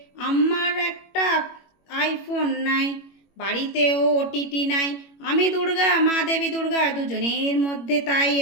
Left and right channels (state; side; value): late; right; 21 ms